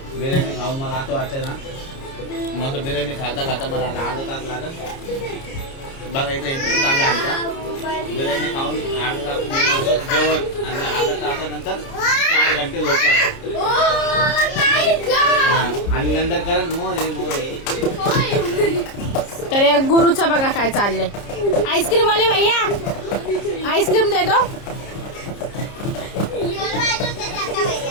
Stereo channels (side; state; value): right; late; 30 ms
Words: बिर्याणी खाऊन मला असं वाटतंय ना मस्त बिर्याणी खाता खाता मला अर्धा तास लागत. बघा इथं इंटरव्ह्यू चालू आहे आमचा. बिर्याणी खाऊन अर्धा तास जेवण आणि अर्धा तासानंतर 4 घंटे झोपत आणि नंतर करत मोरे. तर या गुरुचं बघा काय चाललंय. आईस्क्रीम आले भैया, आईस्क्रीम दे दो.